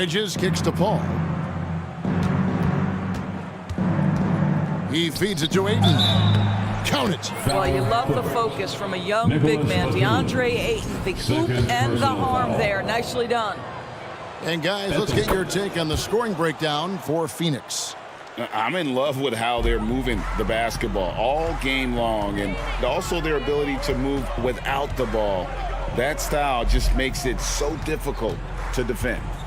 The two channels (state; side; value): identical; both; correlation 1.00